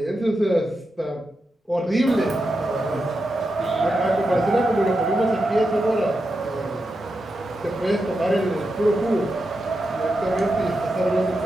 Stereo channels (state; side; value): normal; both; correlation 0.88